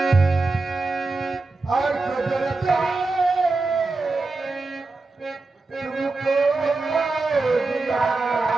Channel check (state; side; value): quieter; left; 3.6 dB